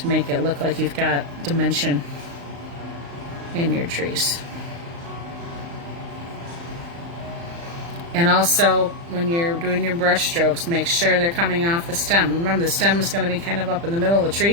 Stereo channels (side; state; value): left; late; 35 ms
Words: make it look like you've got dimension in your trees. And also, when you're doing your brush strokes, make sure they're coming off the stem. Remember, the stem is going to be kind of up in the middle of the